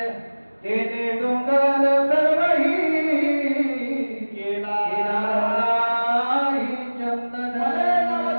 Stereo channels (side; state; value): both; inverted; correlation -1.00